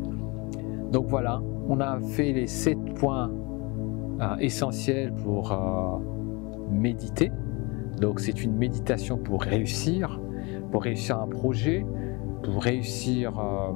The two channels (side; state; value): right; quieter; 27.6 dB